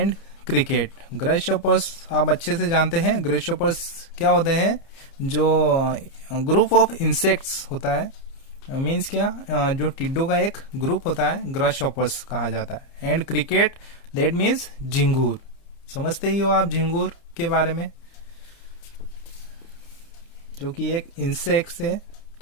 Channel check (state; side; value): late; right; 30 ms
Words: Cricket. Grasshoppers आप अच्छे से जानते हैं. Grasshoppers क्या होते हैं? जो ग्रुप ऑफ इंसेक्ट्स होता है. मीन्स क्या? जो टिड्डों का एक ग्रुप होता है, ग्रासशॉपर्स कहा जाता है. एंड क्रिकेट, दैट मीन्स झिंगूर. समझते ही हो आप झिंगूर के बारे में, जो कि एक इंसेक्ट है.